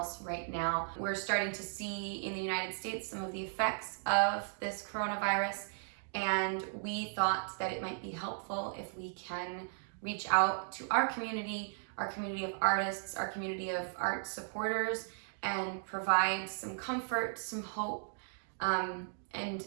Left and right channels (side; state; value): left; silent; digital silence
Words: right now. We're starting to see in the United States some of the effects of this coronavirus, and we thought that it might be helpful if we can reach out to our community of artists, our community of art supporters, and provide some comfort, some hope,